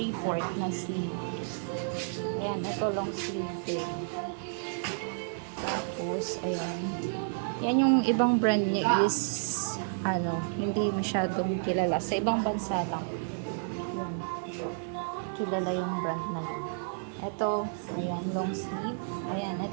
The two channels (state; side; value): silent; left; 57 dB below the other